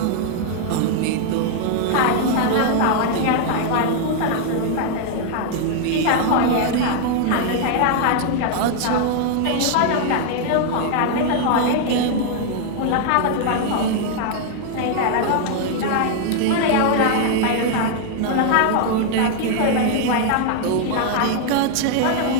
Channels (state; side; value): different; both; correlation 0.00